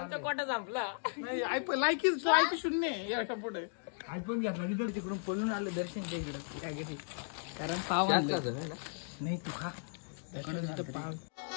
कोटा संपला. नाही लायकी 0 याच्या पुढे आयफोन घेतला तिकडे तिकडून पळून आलं दर्शनच्या इकडे त्या घरी. कारण पाव नाही तू खा. पाव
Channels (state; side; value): silent; right; digital silence